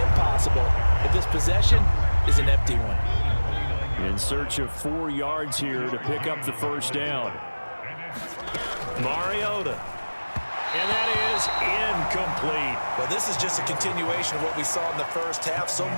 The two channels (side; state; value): both; inverted; correlation -1.00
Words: if this possession is an empty one. In search of 4 yards here to pick up the first down. Mariota. And that is incomplete. Well, this is just a continuation of what we saw in the first half. So